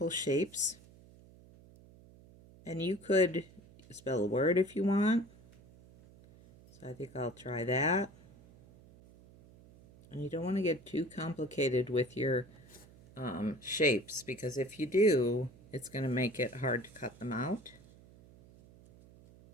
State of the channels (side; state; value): right; noise; hum, 23 dB below the sound